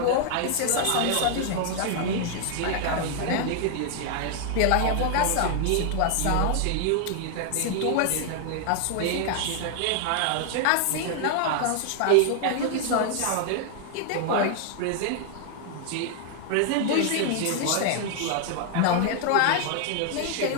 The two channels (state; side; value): different; both; correlation 0.00